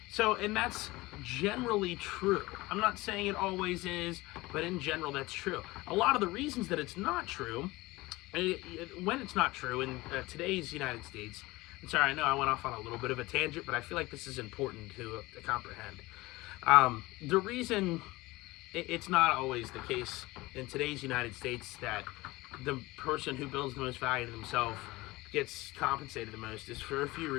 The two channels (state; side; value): quieter; right; 20.6 dB